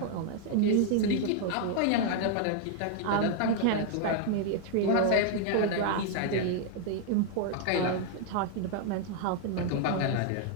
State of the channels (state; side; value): different; both; correlation 0.00